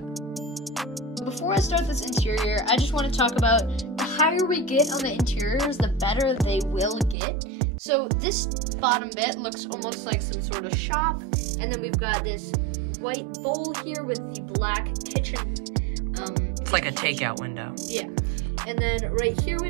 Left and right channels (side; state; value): left; drops out; at 7.2 s